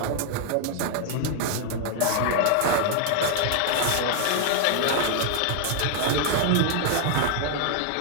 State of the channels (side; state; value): both; different; correlation 0.00